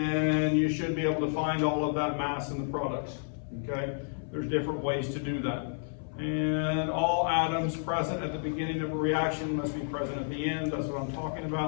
you should be able to find all of that mass in the products, okay? There's different ways to do that. And all atoms present at the beginning of a reaction must be present at the end. That's what I'm talking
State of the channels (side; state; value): right; silent; 56 dB below the other